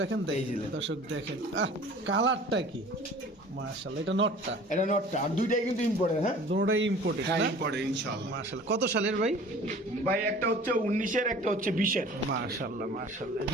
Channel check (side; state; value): both; normal; correlation 0.46